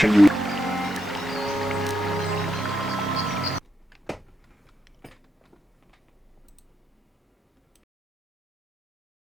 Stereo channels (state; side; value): normal; both; correlation 0.82